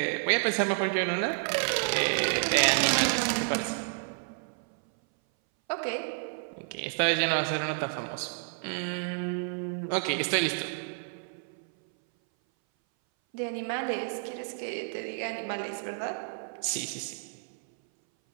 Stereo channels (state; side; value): silent; left; 58 dB below the other